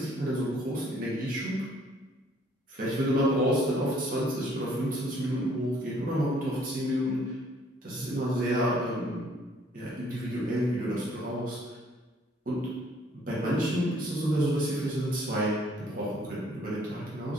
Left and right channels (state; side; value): normal; both; correlation 0.62